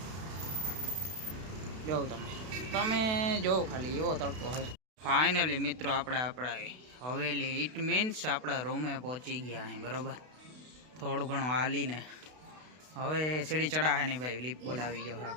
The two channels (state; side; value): late; left; 32 ms